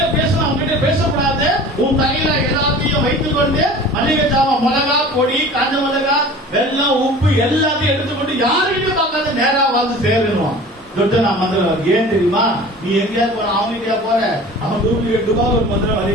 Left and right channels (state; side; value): normal; both; correlation 0.41